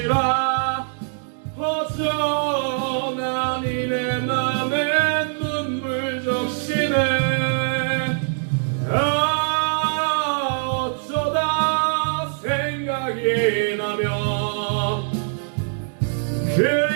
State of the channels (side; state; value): left; silent; digital silence